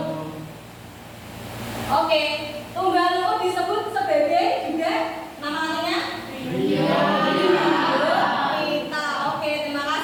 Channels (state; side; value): identical; both; correlation 1.00